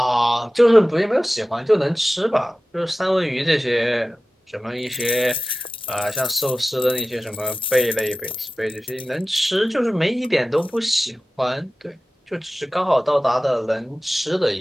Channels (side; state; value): both; normal; correlation 0.95